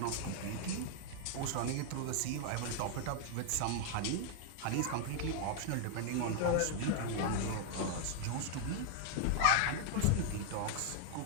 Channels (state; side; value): different; both; correlation 0.00